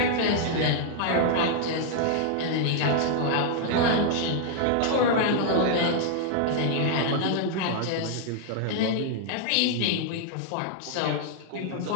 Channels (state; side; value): different; both; correlation -0.01